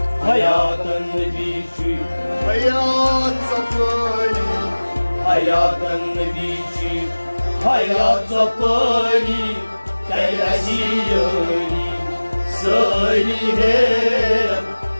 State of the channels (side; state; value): both; inverted; correlation -1.00